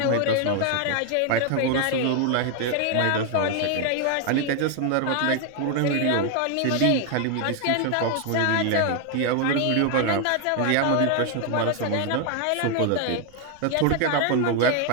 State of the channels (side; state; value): both; different; correlation 0.00